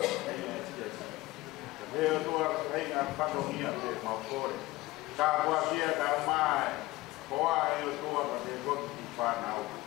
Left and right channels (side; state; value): right; quieter; 19.3 dB